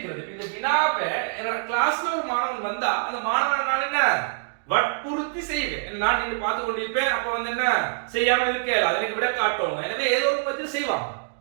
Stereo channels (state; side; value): silent; left; digital silence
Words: இந்த வினாவை என்னோட கிளாஸ்ல ஒரு மாணவன் வந்தா அந்த மாணவனை நான் என்ன வற்புறுத்தி செய்வேன். நான் நின்று பார்த்து கொண்டிருப்பேன். அப்ப வந்து என்ன செய்யாம இருக்கேன் அதை எனக்கு விட காட்டுவாங்க. எனவே ஏதோ ஒரு பத்தி செய்வாங்க.